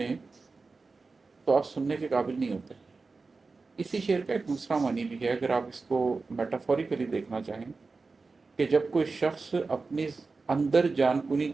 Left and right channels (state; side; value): quieter; left; 4.1 dB